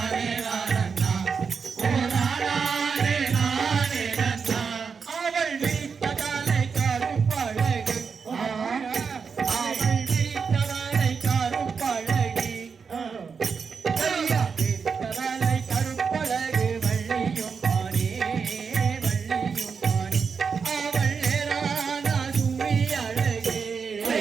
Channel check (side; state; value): left; quieter; 5.8 dB